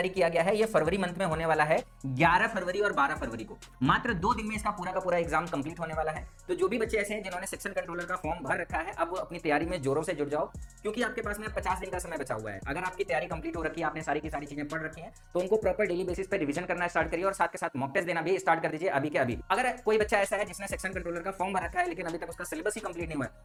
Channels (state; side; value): identical; both; correlation 1.00